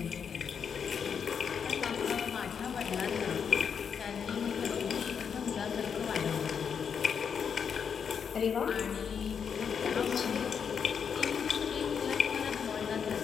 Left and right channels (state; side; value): quieter; right; 7.0 dB